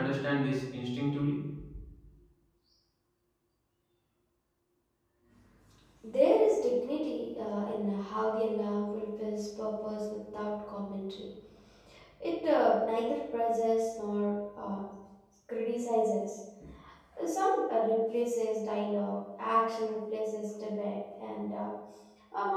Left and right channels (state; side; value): identical; both; correlation 1.00